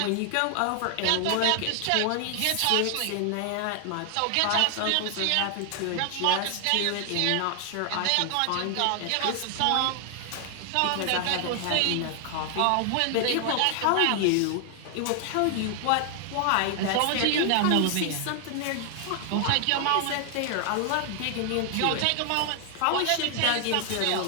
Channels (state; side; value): different; both; correlation 0.00